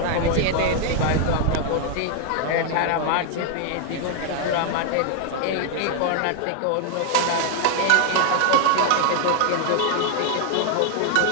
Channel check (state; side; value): different; both; correlation 0.00